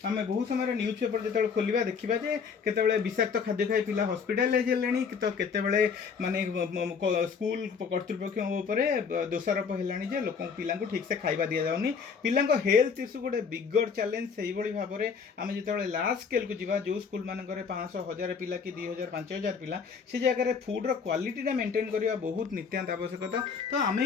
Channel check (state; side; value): quieter; right; 5.9 dB